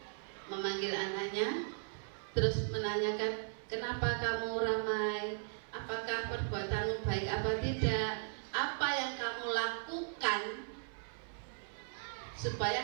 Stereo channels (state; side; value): silent; left; 53 dB below the other